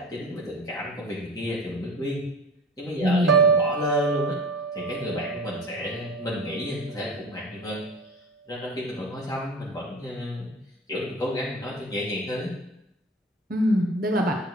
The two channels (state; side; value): normal; both; correlation 0.36